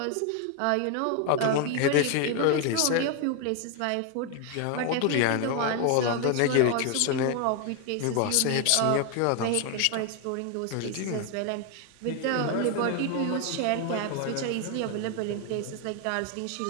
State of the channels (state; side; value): different; both; correlation 0.01